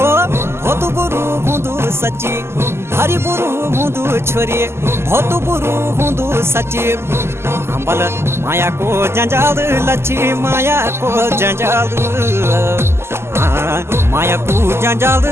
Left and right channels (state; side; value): late; left; 0.12 ms